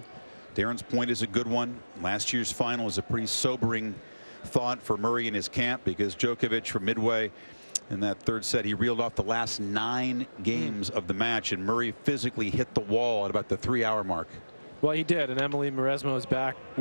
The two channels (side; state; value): both; inverted; correlation -1.00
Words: Darren's point is a good one. Last year's final is a pretty sobering thought for Murray and his camp, because Djokovic from midway in that third set, he reeled off the last 9 games of the match, and Murray physically hit the wall at about the 3-hour mark. Well, he did, and Emily Mauresmo is back